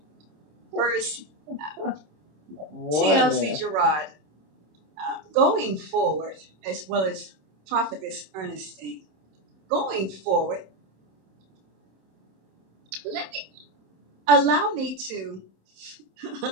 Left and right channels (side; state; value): left; late; 26 ms